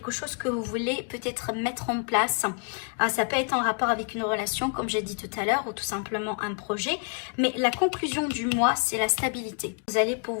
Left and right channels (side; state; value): right; quieter; 38.8 dB